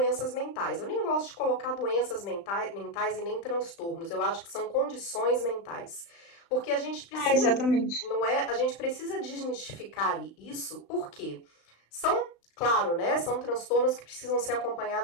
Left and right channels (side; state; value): right; late; 35 ms